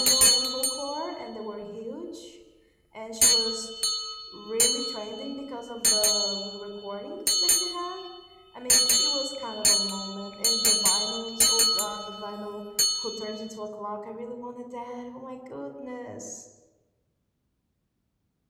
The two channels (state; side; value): identical; both; correlation 1.00